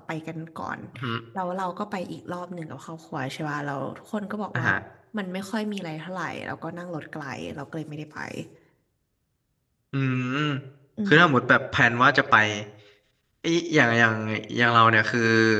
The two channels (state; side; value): identical; both; correlation 1.00